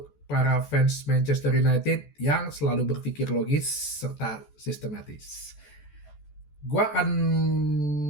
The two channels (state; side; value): late; right; 14 ms